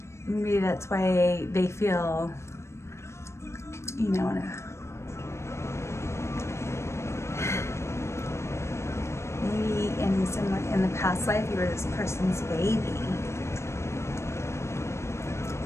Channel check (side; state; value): right; late; 0.13 ms